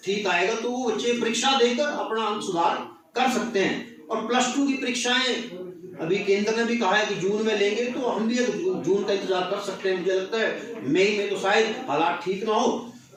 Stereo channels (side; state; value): both; identical; correlation 1.00